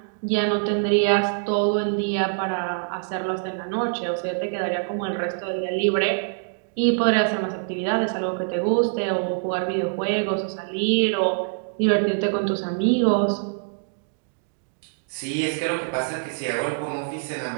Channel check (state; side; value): silent; left; digital silence